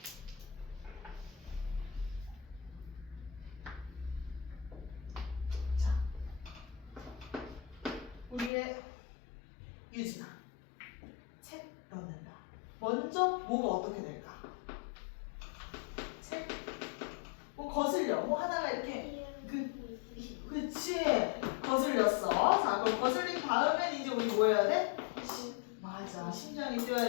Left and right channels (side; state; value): right; drops out; at 8.5 s